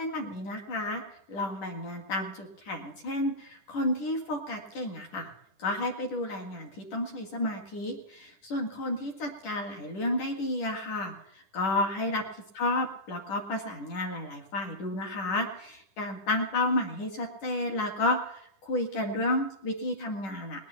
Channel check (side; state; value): right; late; 10 ms